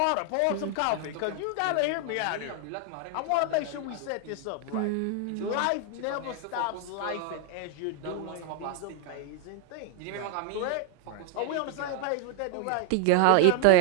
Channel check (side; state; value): both; different; correlation 0.00